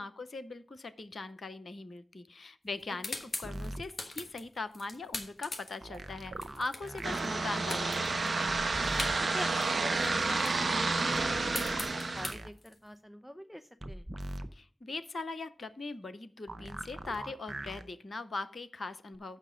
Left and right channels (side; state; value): both; normal; correlation 0.90